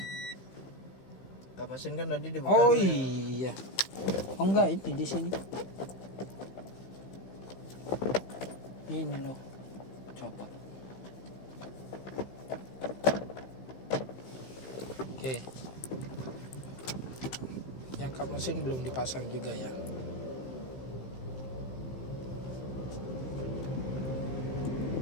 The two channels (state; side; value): late; right; 15 ms